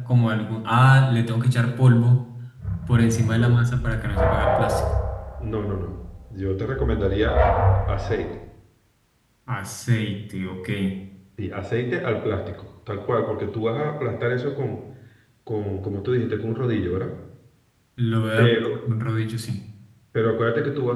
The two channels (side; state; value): both; identical; correlation 1.00